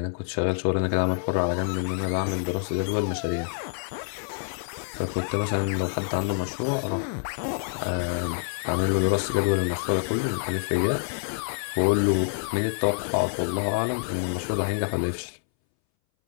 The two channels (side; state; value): right; silent; 60 dB below the other